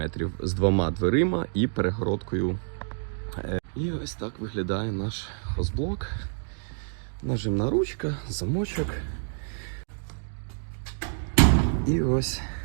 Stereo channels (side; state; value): left; silent; digital silence